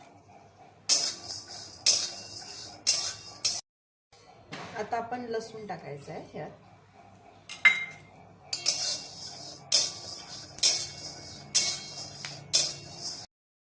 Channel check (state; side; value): identical; both; correlation 1.00